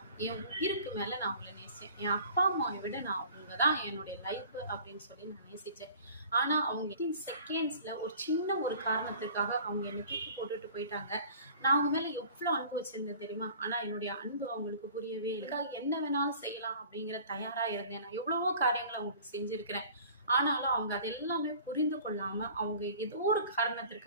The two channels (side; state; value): both; inverted; correlation -0.46